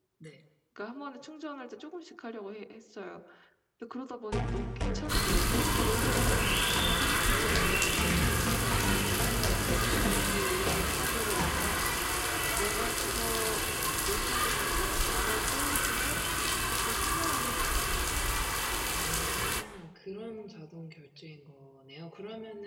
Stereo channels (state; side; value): identical; both; correlation 1.00